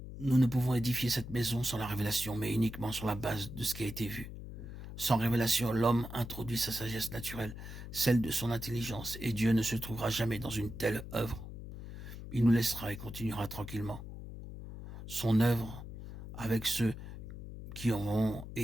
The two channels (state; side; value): noise; left; hum, 11 dB below the sound